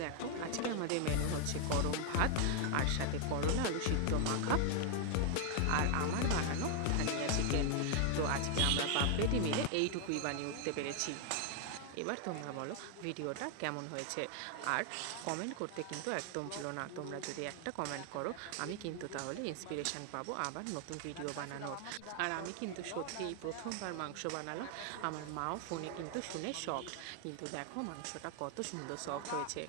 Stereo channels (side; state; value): both; different; correlation 0.00